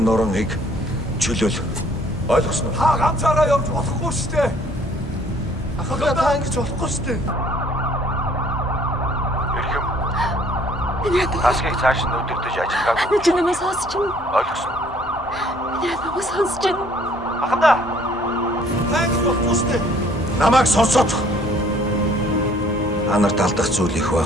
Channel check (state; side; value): normal; both; correlation 0.58